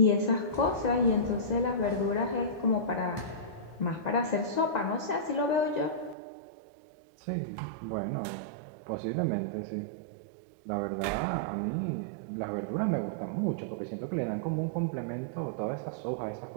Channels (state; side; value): drops out; left; at 6.2 s